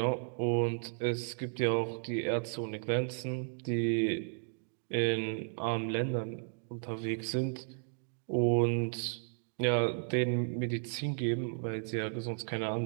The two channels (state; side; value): silent; left; digital silence